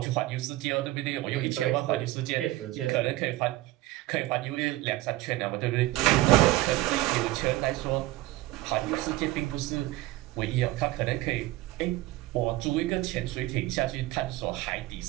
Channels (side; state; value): left; quieter; 17.5 dB